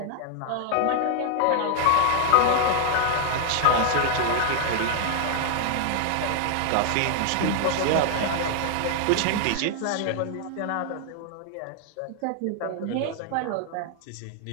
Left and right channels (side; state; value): both; different; correlation 0.00